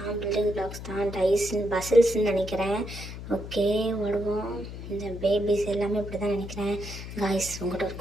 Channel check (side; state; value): left; noise; hum, 10 dB below the sound